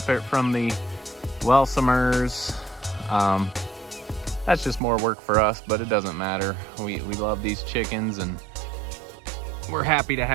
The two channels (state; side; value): drops out; left; at 4.8 s